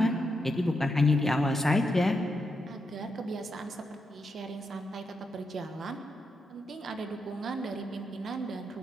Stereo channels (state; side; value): normal; both; correlation 0.83